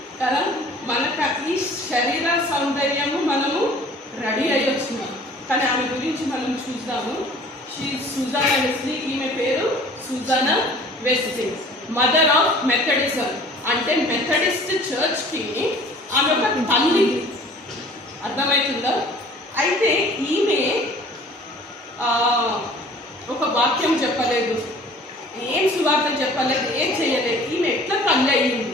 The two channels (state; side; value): normal; both; correlation 0.49